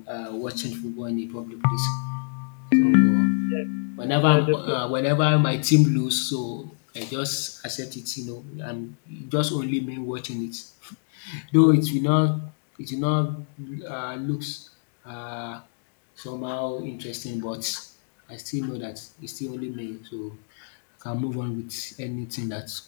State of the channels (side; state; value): right; silent; digital silence